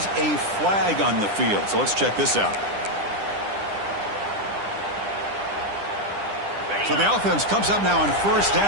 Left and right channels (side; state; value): left; late; 10 ms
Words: a flag on the field. So let's check this out. So the offense comes up now on 1st